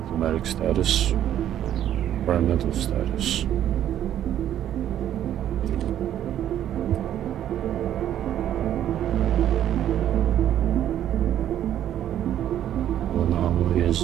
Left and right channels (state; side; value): quieter; left; 11.1 dB